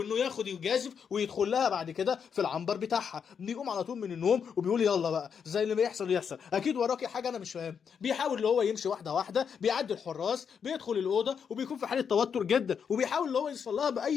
ياخد يجازف ويدخل لها بعد كده في العنبر بتاعها. بيقوم على طول من النوم وبيقول يلا بقى زي اللي بيحصل يحصل، اكيد وراكي حاجه انا مش فاهم. بيحاول اللي هو يمشي واحده واحده، بيعدي الحراس، بيدخل الاوضه وبيكون في حاله توتر جدا، وبيحاول اللي هو يوصل لها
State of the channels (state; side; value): quieter; right; 7.0 dB